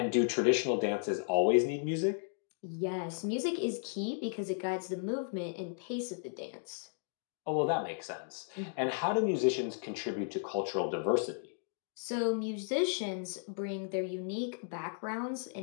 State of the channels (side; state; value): right; silent; 55 dB below the other